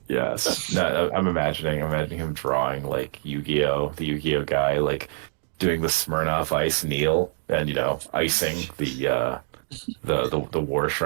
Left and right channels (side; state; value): left; silent; digital silence